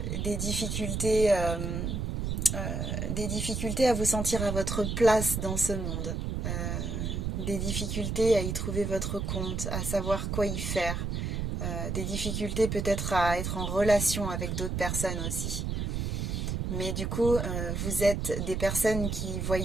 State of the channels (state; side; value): noise; right; rumble, 2 dB below the sound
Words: des difficultés à vous sentir à votre place dans ce monde. Des difficultés à y trouver votre compte, à savoir quoi y faire. Des difficultés peut-être à être en relation avec d'autres personnes aussi. Mais du coup, vous êtes des personnes qui